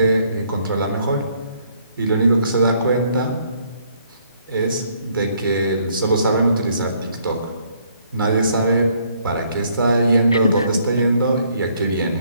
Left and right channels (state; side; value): inverted; both; correlation -0.67